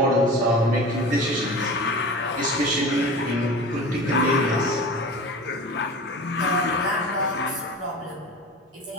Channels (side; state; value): both; normal; correlation 0.34